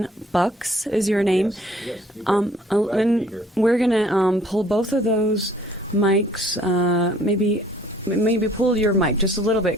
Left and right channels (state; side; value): normal; both; correlation 0.57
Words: Bucks is your name. Yes, and we're going to pull both of those mics, Maybe pull your mic just a little